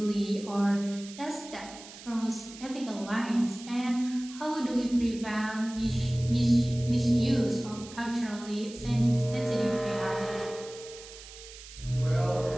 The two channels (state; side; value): noise; right; hiss, 16 dB below the sound